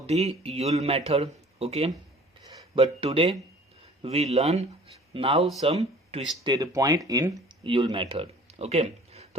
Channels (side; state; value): both; normal; correlation 0.49